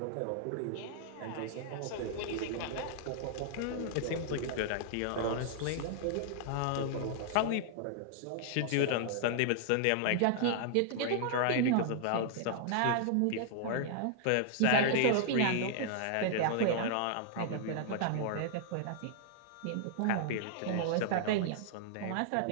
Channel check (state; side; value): different; both; correlation -0.01